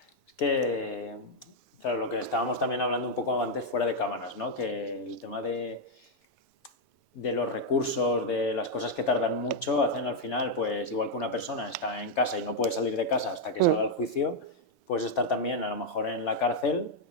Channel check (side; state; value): both; normal; correlation 0.00